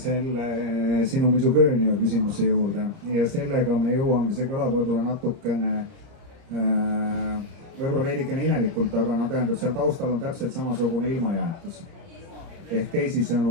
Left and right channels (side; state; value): left; late; 30 ms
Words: sinu misogöönia küsimuse juurde ja sellega me jõuame, see kõlab võib-olla natukene, võib-olla veidikene imelikult, aga no tähendab, seal taustal on täpselt samasugune ilmajäetus. Ehk